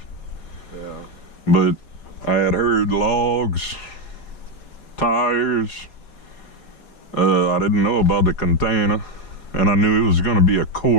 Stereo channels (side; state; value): right; late; 4.6 ms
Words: Yeah. But I had heard logs, tires. I didn't know about the container, and I knew it was going to be a